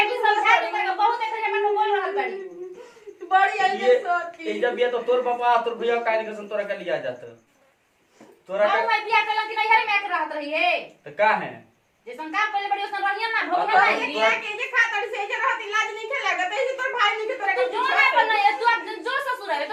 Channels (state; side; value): identical; both; correlation 1.00